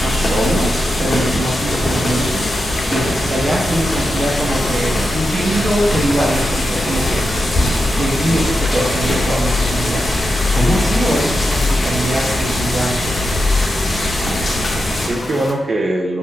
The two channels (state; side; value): normal; both; correlation 0.88